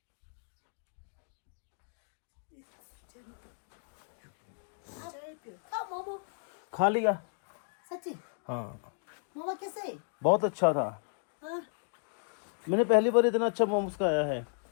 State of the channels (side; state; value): right; silent; 55 dB below the other